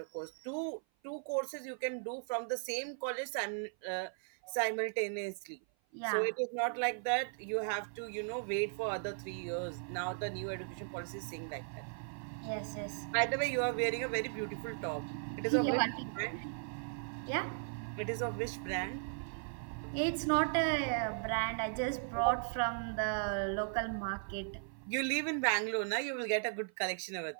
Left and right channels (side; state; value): left; silent; 53 dB below the other